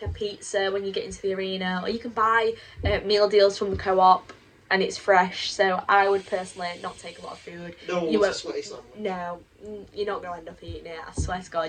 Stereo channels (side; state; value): both; identical; correlation 1.00